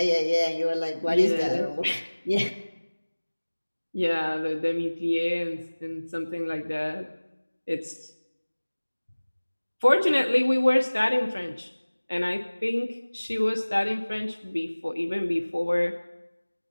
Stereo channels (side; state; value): both; inverted; correlation -1.00